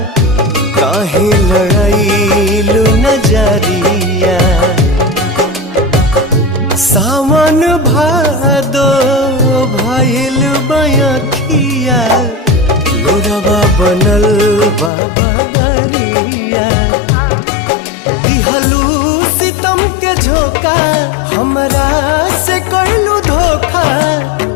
काहे लड़ाईलू नजरिया। सावन भादो भइल बयखिया लोरवा बनल बाबा दरिया। दिहलू सितम के झोंका हमरा से कइलू धोखा।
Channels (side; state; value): right; drops out; at 14.9 s